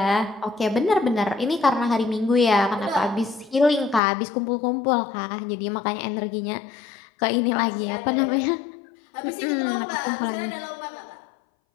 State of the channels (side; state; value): right; drops out; at 4.0 s